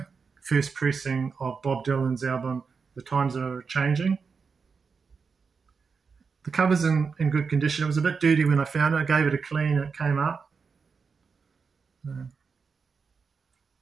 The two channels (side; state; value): left; quieter; 5.3 dB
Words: first pressing of Bob Dylan's album, The Times Are Changing. The cover's in good condition. It was a bit dirty when I found it. I gave it a clean and it came up.